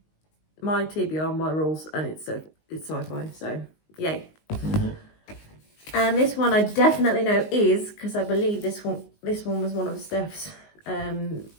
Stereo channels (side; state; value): right; late; 19 ms